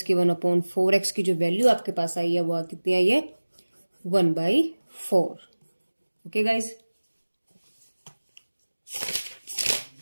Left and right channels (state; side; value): inverted; both; correlation -1.00